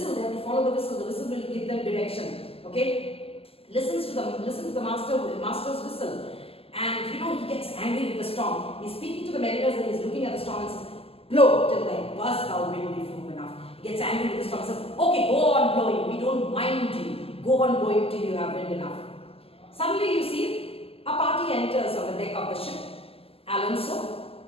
they have to follow the whistle will give them direction. Okay? Listen to the master's whistle. And you know, he gets angry with the storm. He's speaking to the mariners and he's looking at the storm and says, blow till then, burst thou wind be firm enough. He gets angry with the storm and says, okay, go on blowing, we don't mind you. Go on blowing till you have wind enough. Suddenly you see, a party enters on the deck of the ship. Alonso.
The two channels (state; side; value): late; right; 0.28 ms